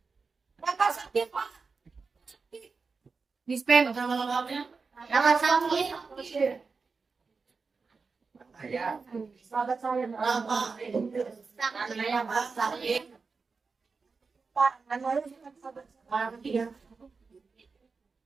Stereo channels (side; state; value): left; quieter; 4.6 dB